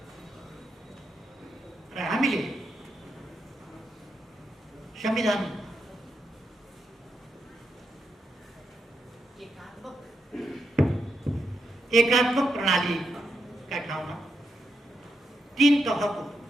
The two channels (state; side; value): normal; both; correlation 0.82